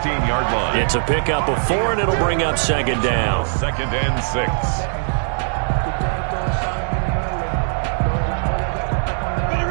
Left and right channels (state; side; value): silent; left; digital silence